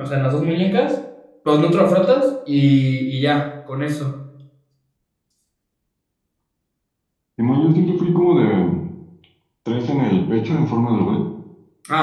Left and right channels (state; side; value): identical; both; correlation 1.00